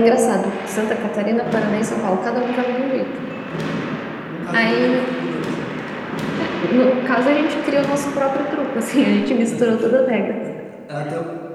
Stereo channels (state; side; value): identical; both; correlation 1.00